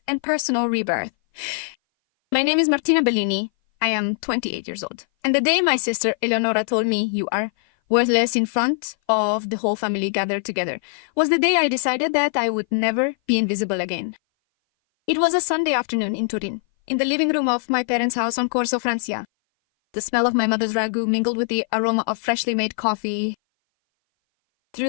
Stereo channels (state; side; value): silent; right; 59 dB below the other